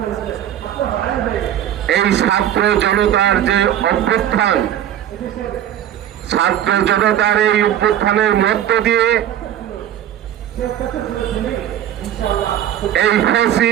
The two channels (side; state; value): left; quieter; 11.0 dB